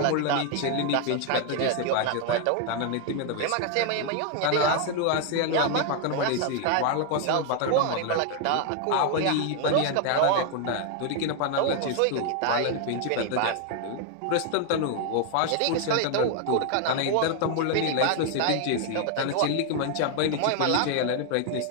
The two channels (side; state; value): both; different; correlation 0.00